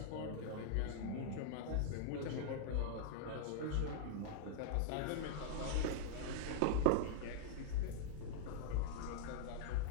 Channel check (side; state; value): both; different; correlation -0.01